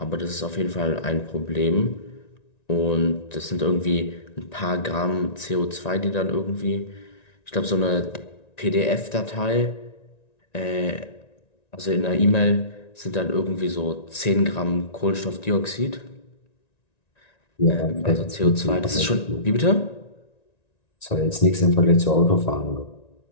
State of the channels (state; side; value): late; right; 1.9 ms